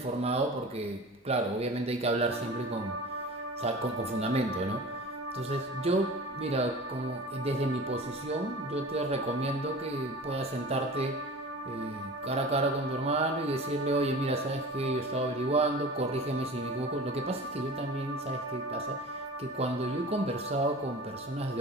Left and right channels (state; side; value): normal; both; correlation 0.37